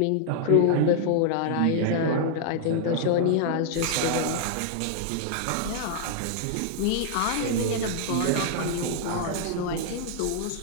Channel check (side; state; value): both; different; correlation -0.01